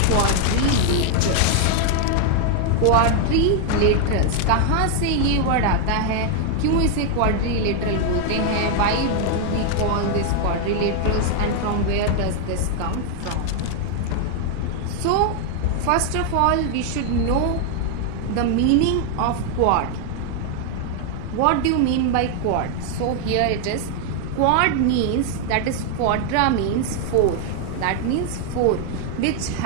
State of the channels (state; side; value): different; both; correlation 0.00